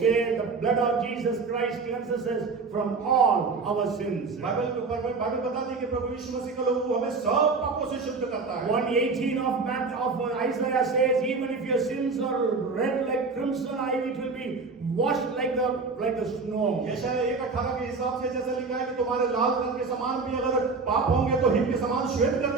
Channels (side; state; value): left; quieter; 4.3 dB